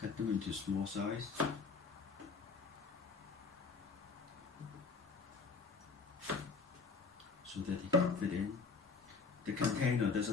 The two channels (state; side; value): quieter; right; 4.6 dB